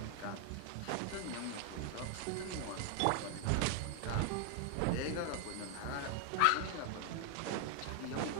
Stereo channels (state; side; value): different; both; correlation 0.01